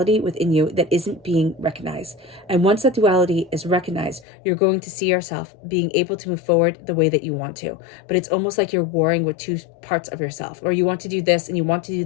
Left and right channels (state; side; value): drops out; right; at 4.2 s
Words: within you that isn't being recognized. And once that duality is recognized, you're going to see yourself being able to move forward the way that you want to. But it's almost like you're warring with two parts of yourself, or you want to do this and you want to do